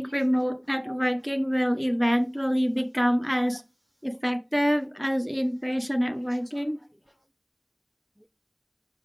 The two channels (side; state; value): both; identical; correlation 1.00